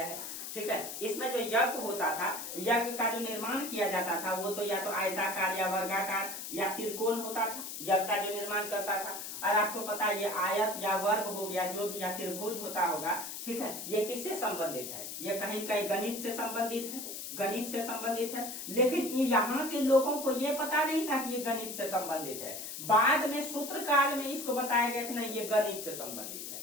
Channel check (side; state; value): left; noise; hiss, 7 dB below the sound